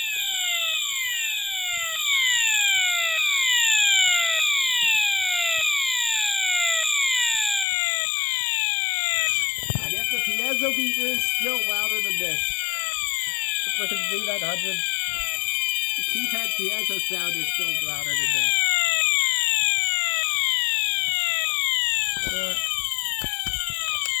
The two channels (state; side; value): drops out; right; at 7.7 s